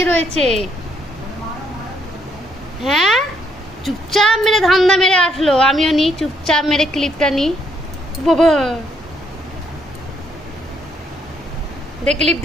রয়েছে। হ্যাঁ, চুপচাপ মেরে ধান্দা মেরে আসলো, আমিও নিই চুপচাপ মেরে ক্লিপটা নিই। বাবা দে ক্লিপ,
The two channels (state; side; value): normal; both; correlation 0.71